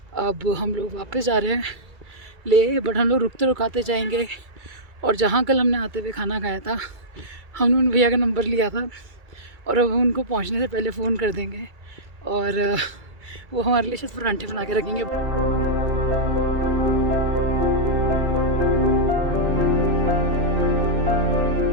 अब हम लोग वापस जा रहे हैं ले, बट हम लोग रुकते रुकाते जाएंगे। और जहाँ कल हमने आते हुए खाना खाया था, हमने उन भैया का नंबर लिया था, और अब उनको पहुँचने से पहले फ़ोन कर देंगे, और वो हमारे लिए शायद परांठे बना के रखेंगे।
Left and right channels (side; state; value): left; late; 2.3 ms